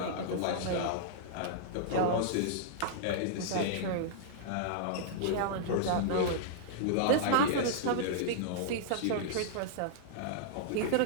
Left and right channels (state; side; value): different; both; correlation -0.02